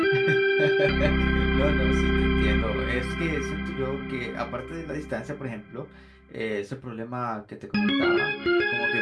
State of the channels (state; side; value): identical; both; correlation 1.00